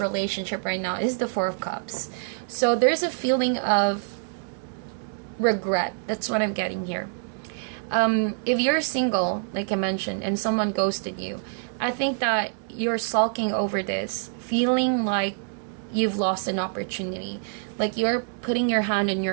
right now is the Four of Cups. So there's a feeling of regret. That's what I'm getting here. If you're single, like I mentioned, and someone ghosted you, I think that you're sulking over this, feeling like you've lost an opportunity. Like you're putting your hand on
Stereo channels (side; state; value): left; silent; digital silence